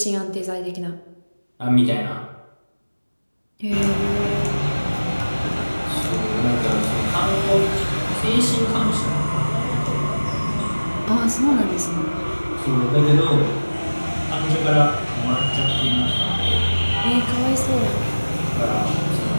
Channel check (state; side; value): inverted; both; correlation -1.00